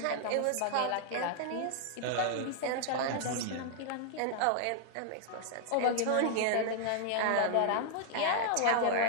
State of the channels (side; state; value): both; different; correlation -0.01